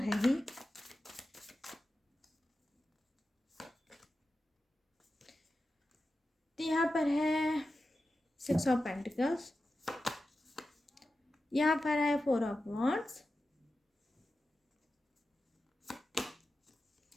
ही। तो यहाँ पर है 6 ऑफ पेंटिकल्स, यहाँ पर है 4 of wands,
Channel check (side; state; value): both; normal; correlation 0.92